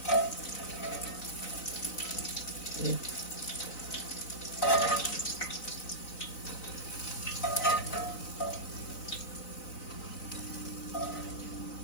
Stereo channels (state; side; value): late; right; 4.0 ms